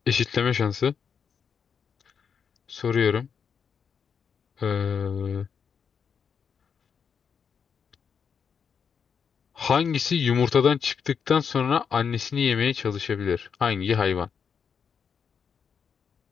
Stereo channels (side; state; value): right; quieter; 6.7 dB